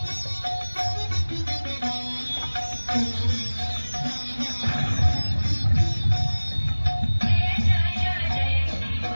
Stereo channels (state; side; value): inverted; both; correlation -1.00